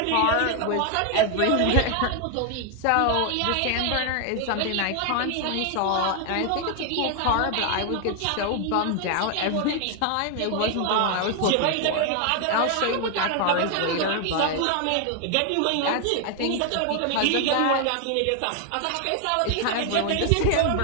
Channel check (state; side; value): different; both; correlation 0.00